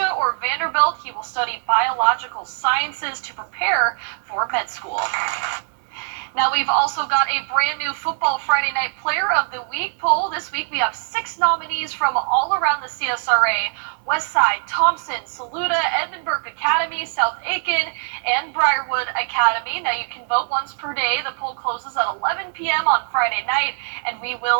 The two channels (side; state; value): left; silent; 64 dB below the other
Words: or Vanderbilt. He will study biological sciences to prepare for med school. Now, we've also got a brand new Football Friday Night Player of the Week poll. This week, we have 6 nominees from all around the CSRA: Westside, Thompson, Saluda, Edmundburg Academy, South Aiken, and Briarwood Academy. Now, you can vote once per day. The poll closes at 11 p.m. on Friday night, and we